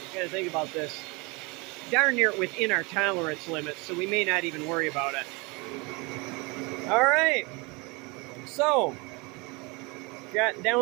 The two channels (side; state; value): left; quieter; 27.3 dB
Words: gotta think about this, darn near within our tolerance limits, so we may not even worry about it. All right, so got